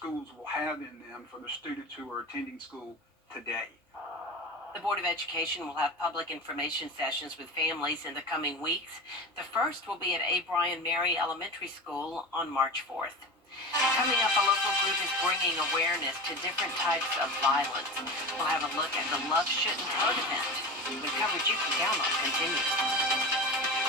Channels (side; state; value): both; normal; correlation 0.29